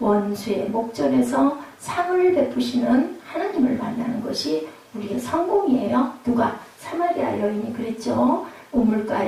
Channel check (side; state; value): both; identical; correlation 1.00